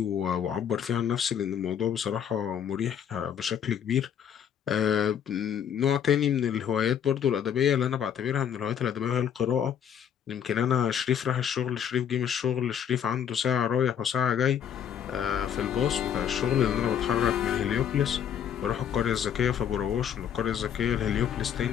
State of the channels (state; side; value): quieter; right; 8.7 dB